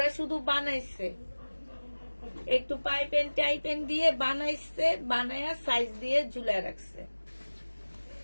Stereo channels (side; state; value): both; inverted; correlation -1.00